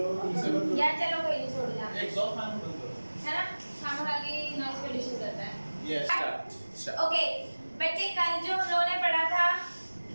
इसे बंद या चलो कोई नहीं, छोड़ दो एग्जॉस्ट फैन बंद करो। है ना, खाना खा के नॉइज पोल्यूशन करता है। Yes start. ओके बच्चे, कल जो हम लोगों ने पढ़ा था,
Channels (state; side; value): inverted; both; correlation -1.00